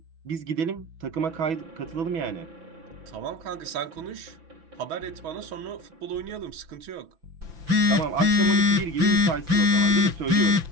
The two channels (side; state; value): left; late; 5.8 ms